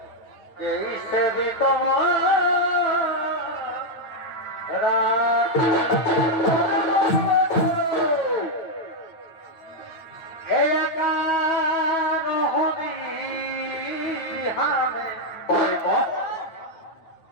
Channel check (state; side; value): late; right; 9.0 ms